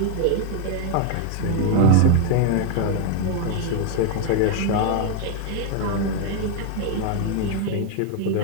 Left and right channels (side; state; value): both; different; correlation 0.00